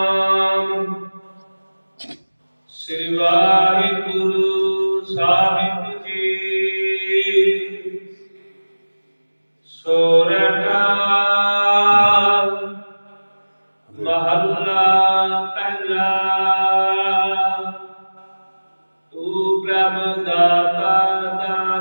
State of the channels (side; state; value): both; inverted; correlation -1.00